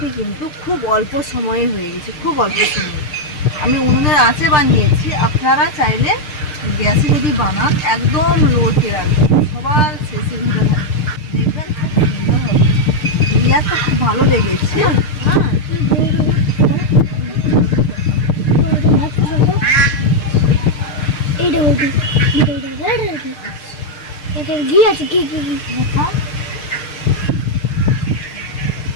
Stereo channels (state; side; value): late; right; 6.6 ms